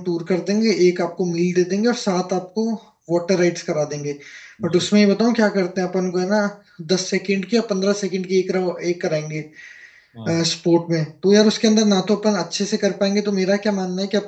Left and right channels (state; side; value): identical; both; correlation 1.00